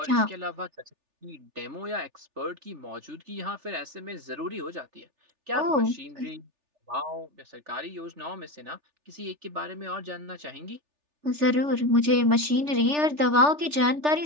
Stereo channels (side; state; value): left; late; 3.4 ms